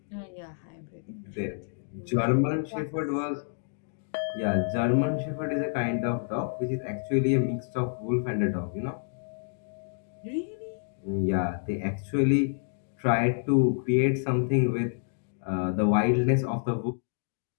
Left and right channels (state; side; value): silent; right; digital silence